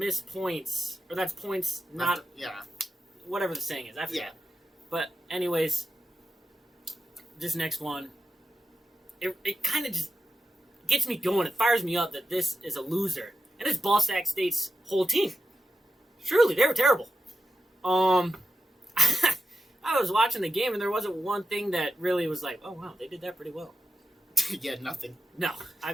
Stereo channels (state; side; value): normal; both; correlation 0.91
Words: points. Or that's points not... Yeah. Whatever the saying is. I forget. Yeah. But anyways, this next one, it kind of just gets me going. It fires me up that this is a loser. And it's Sac State's whole team. Truly, they were terrible. I was watching the game and there wasn't one thing that really was like, oh wow, they did that pretty well. Yeah, nothing. No, I